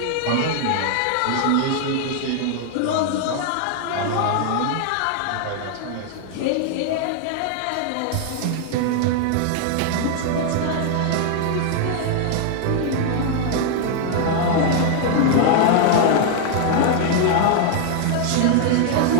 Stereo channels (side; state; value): both; different; correlation 0.00